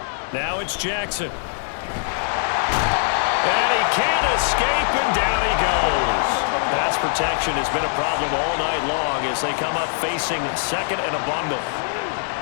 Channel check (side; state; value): right; silent; digital silence